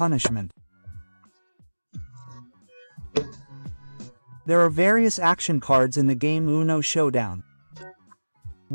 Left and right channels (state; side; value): inverted; both; correlation -1.00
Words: There are various action cards in the game UNO Showdown.